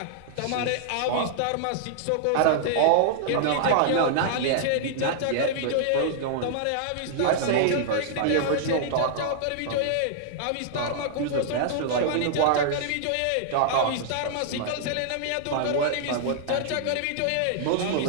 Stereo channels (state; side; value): different; both; correlation -0.01